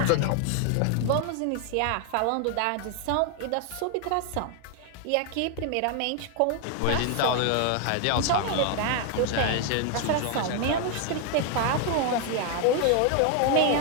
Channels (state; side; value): different; both; correlation 0.00